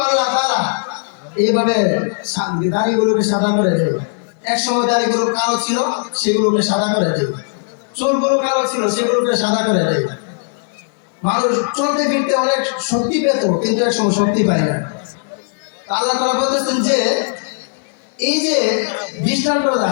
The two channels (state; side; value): silent; right; digital silence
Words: আল্লাহ তাআলা এইভাবে দাড়িগুলোকে সাদা করে দেয়। এক সময় দাড়িগুলো কালো ছিল, সেগুলোকে সাদা করে দেয়। চুলগুলো কালো ছিল, সেগুলোকে সাদা করে দেয়। মানুষ চলতে ফিরতে অনেক শক্তি পেত, কিন্তু এক সময় শক্তি পায় না। আল্লাহ তাআলা বলতেছেন যে এই যে দৃষ্টান্তটা